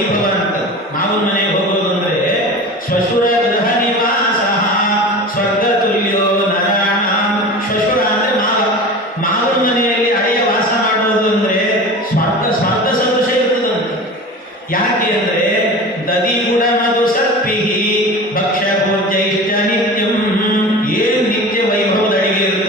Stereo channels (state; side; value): normal; both; correlation 0.34